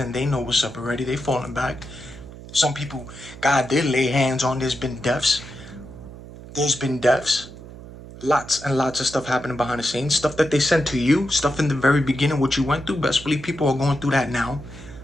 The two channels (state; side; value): noise; right; hum, 15 dB below the sound